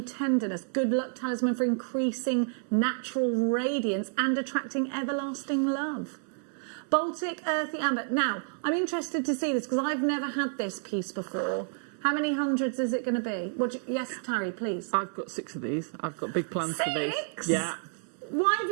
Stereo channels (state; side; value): silent; left; 58 dB below the other